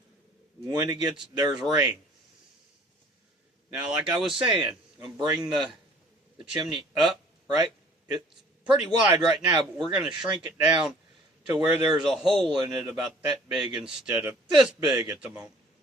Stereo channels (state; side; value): normal; both; correlation 0.53